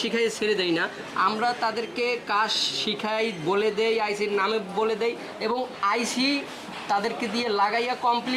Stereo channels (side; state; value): both; identical; correlation 1.00